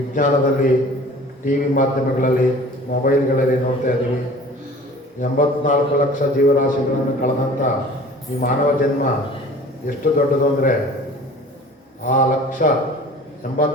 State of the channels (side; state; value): both; normal; correlation 0.46